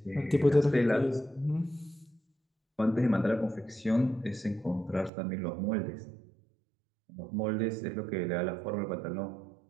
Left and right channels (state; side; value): drops out; left; at 5.1 s